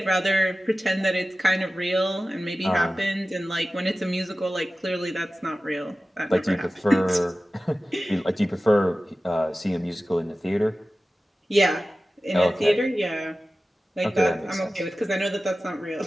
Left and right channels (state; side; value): normal; both; correlation 0.95